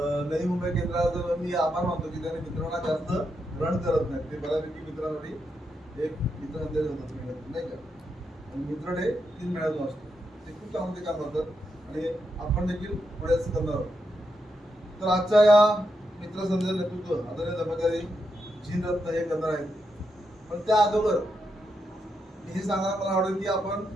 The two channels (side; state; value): both; normal; correlation 0.83